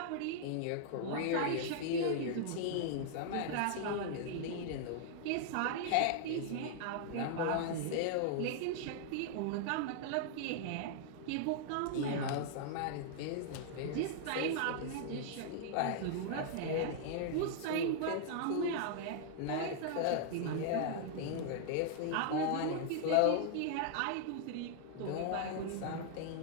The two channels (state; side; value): different; both; correlation -0.01